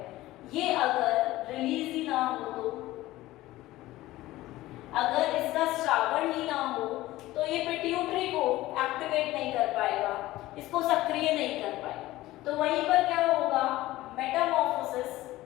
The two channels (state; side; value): quieter; right; 17.0 dB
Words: ये अगर रिलीज ही ना हो, तो अगर इसका श्रावण ही ना हो, तो ये पिट्यूटरी को एक्टिवेट नहीं कर पाएगा, इसको सक्रिय नहीं कर पाएगा। तो वहीं पर क्या होगा, मेटामॉर्फोसिस